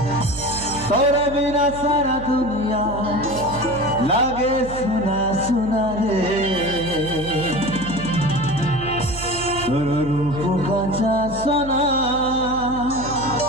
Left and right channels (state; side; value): noise; right; hum, 12 dB below the sound